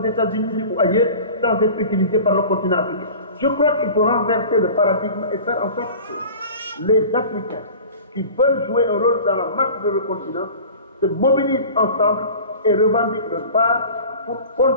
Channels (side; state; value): both; inverted; correlation -0.39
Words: États-Unis ou ailleurs, sans être utilisé par le continent africain. Je crois qu'il faut renverser le paradigme et faire en sorte que les Africains qui veulent jouer un rôle dans la marche de le continent se mobilisent ensemble et revendiquent leur part pour